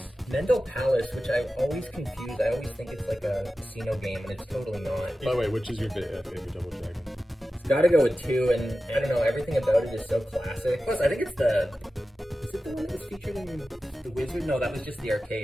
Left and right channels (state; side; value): normal; both; correlation 0.94